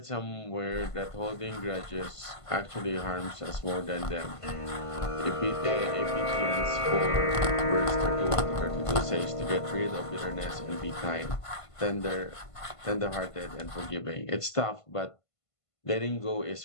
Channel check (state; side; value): late; right; 1.5 ms